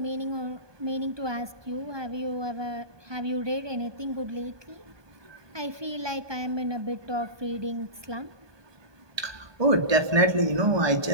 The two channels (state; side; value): late; left; 1.2 ms